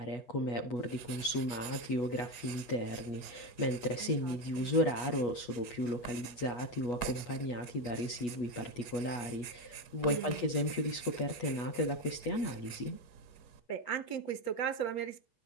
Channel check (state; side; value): late; right; 8.3 ms